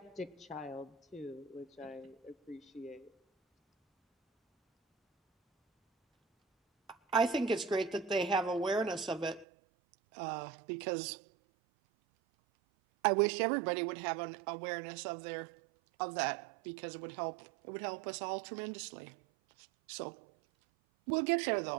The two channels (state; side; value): drops out; left; at 9.5 s